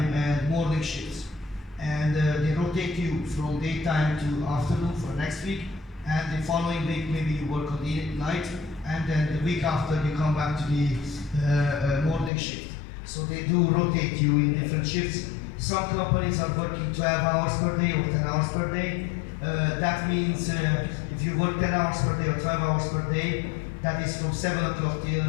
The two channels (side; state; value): right; drops out; at 12.3 s